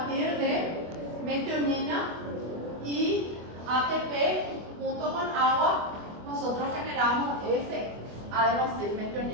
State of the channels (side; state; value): left; late; 24 ms